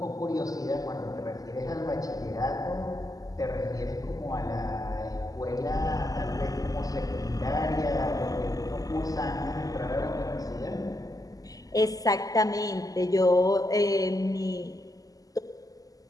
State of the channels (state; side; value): late; right; 0.17 ms